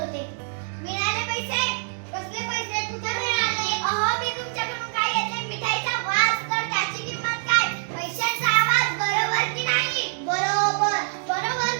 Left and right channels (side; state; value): left; silent; digital silence